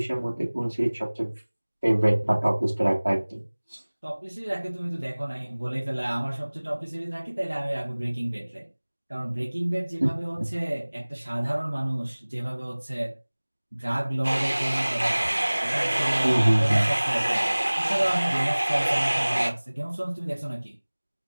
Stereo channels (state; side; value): inverted; both; correlation -1.00